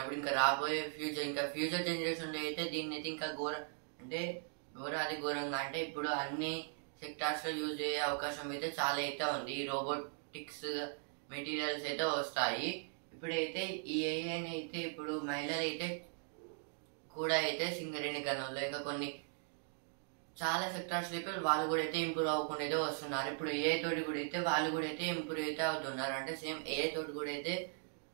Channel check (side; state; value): left; silent; 52 dB below the other